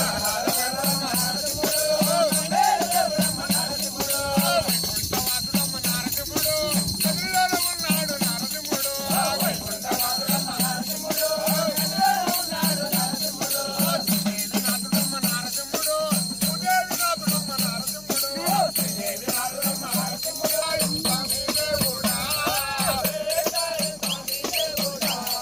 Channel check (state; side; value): noise; left; hum, 25 dB below the sound